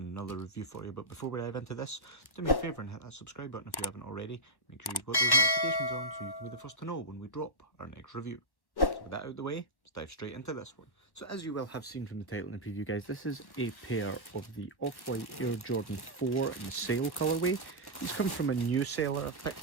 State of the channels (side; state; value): right; late; 1.1 ms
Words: review for you, but before we dive into this, do me a favour and hit that subscribe button if you haven't already. Make sure you've got those notifications on so you can be the first to know when we drop our next review. So with that out of the way, let's dive straight into this one. So as you will have seen from the title and the preview, guys, this is a pair of the Off-White Air Jordan 4 in the sail colourway. These come from a new seller I've